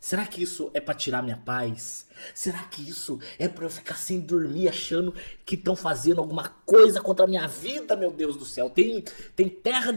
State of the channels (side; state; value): both; inverted; correlation -1.00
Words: Será que isso é pra tirar minha paz? Será que isso é pra eu ficar sem dormir achando que estão fazendo alguma coisa contra a minha vida, meu Deus do céu? Tem terra